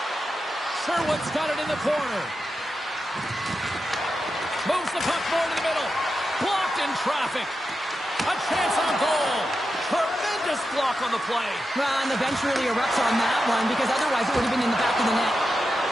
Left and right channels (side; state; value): both; normal; correlation 0.89